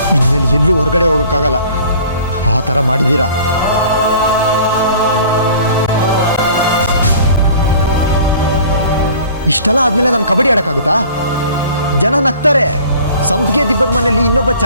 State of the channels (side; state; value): both; inverted; correlation -0.48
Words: ಇನ್ಮೇಲೆ ಎಲ್ಲೂ ಹೊರಗಡೆ ಹೋಗೋಕ್ಕಾಗಲ್ಲ. ಆ ಥರ ಮಾಡಿದ್ದೀರಾ. ಇಷ್ಟೆಲ್ಲ ಆದ್ಮೇಲೆ ನಾನು ಕಬಡ್ಡಿ ಆಡೋಕ್ಕಾಗುತ್ತಾ? ಜನ ನಗ್ತಾರೆ, ಸಂಪಿಗೆ ದಿಬ್ಬದ ಮನೆಯಲ್ಲಿ ಇನ್ನೊಬ್ಬ